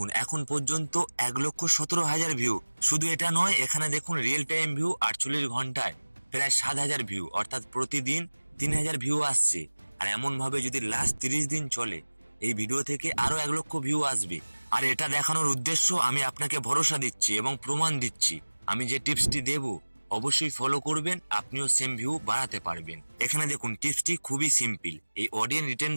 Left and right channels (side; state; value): both; inverted; correlation -1.00